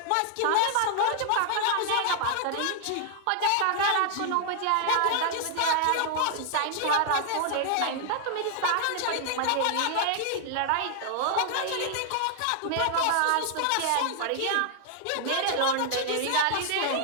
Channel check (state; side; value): different; both; correlation 0.00